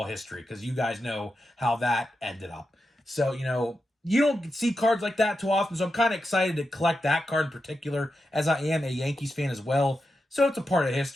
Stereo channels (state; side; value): normal; both; correlation 0.88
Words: history, because you guys know how that ended up. So, you don't see cards like that too often, so I'm kind of excited to collect that card in particular, as I am a Yankees fan as well. So it's a part of